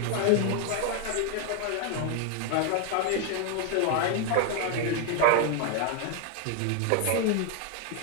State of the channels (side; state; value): both; different; correlation 0.01